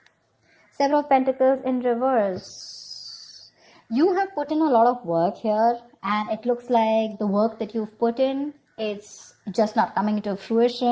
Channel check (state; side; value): identical; both; correlation 1.00